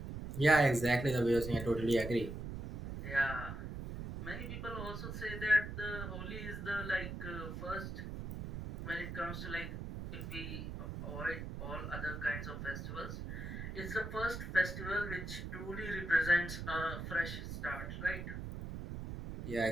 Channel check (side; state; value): right; noise; rumble, 7 dB below the sound